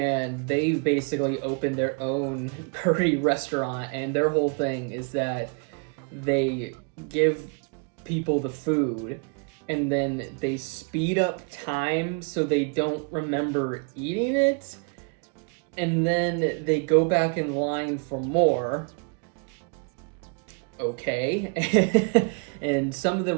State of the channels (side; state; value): left; quieter; 37.9 dB